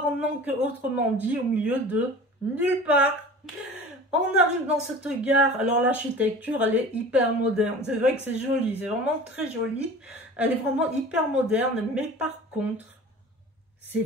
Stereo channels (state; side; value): normal; both; correlation 0.40